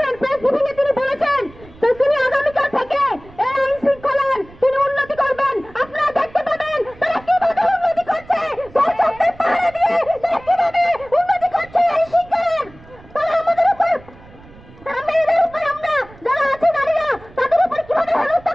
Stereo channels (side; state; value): right; noise; rumble, 22 dB below the sound